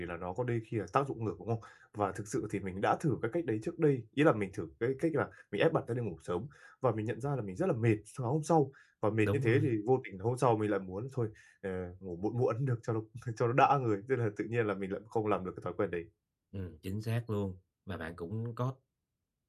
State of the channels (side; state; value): both; identical; correlation 1.00